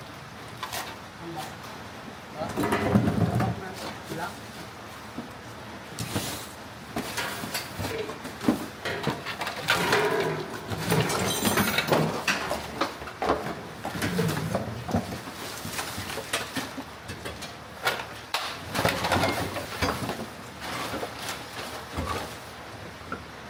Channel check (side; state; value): both; identical; correlation 1.00